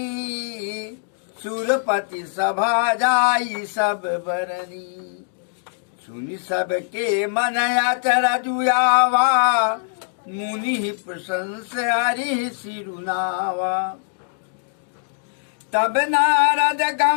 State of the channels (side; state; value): right; silent; digital silence